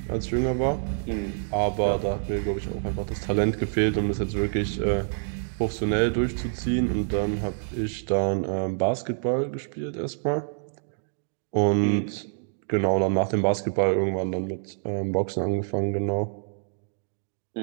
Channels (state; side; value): silent; left; digital silence